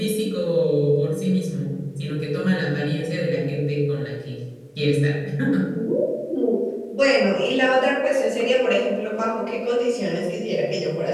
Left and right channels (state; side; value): identical; both; correlation 1.00